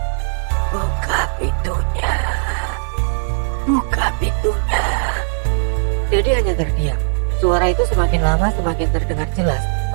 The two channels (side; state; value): left; silent; digital silence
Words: "Buka pintunya, buka pintunya." Dedi hanya terdiam. Suara itu semakin lama semakin terdengar jelas